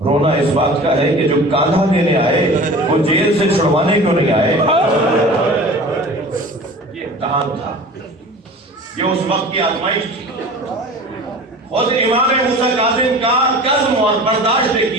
رونا اس بات کا ہے کہ جو کاندھا دینے آئے وہ جیل سے چھڑوانے کیوں نہیں آئے. یہ امتحان تھا، یہ اس وقت کی آزمائش تھی. خود امام موسیٰ کاظم کا قسم اور برداشت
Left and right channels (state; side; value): normal; both; correlation 0.39